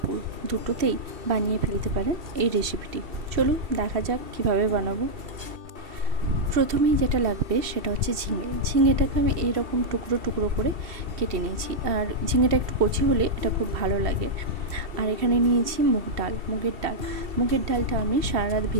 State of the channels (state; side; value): late; left; 2.7 ms